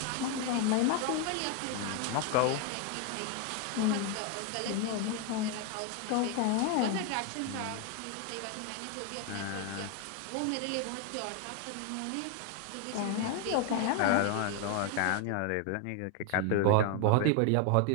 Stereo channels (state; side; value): different; both; correlation 0.01